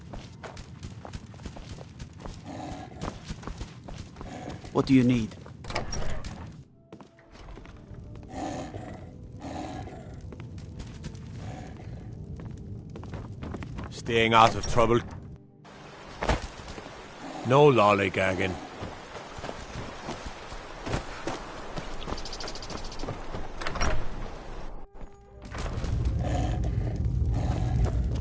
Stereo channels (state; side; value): identical; both; correlation 1.00